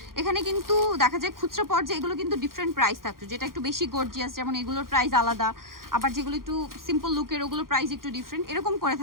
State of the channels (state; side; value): late; left; 0.92 ms